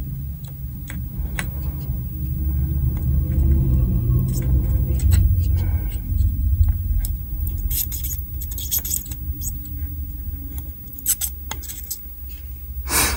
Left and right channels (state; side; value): identical; both; correlation 1.00